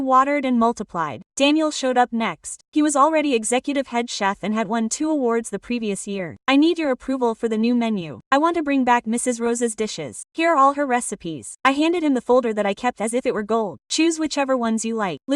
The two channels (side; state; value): both; identical; correlation 1.00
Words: watered and multiplied. Daniel showed up next. He was already executive head chef and had won 2 awards the previous year. I need your approval for the new menu. I want to bring back Mrs. Rosa's dishes. Here are all her recipes. I handed him the folder that I kept as if it were gold. Choose whichever ones you like.